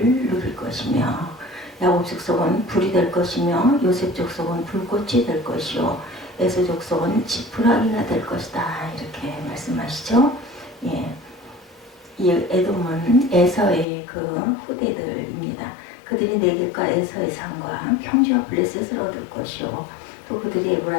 누릴 것이며 야곱 족속은 불이 될 것이며 요셉 족속은 불꽃이 될 것이요 에서 족속은 지푸라기가 될 것이다 이렇게 말씀하시죠. 이 에돔은 에서의 그 후대들입니다. 그들이 네겝과 에서의 산과 평지와 블레셋을 얻을 것이요 또 그들이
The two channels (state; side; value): drops out; right; at 13.9 s